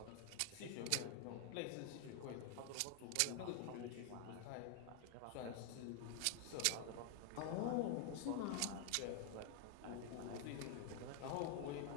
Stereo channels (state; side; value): different; both; correlation 0.00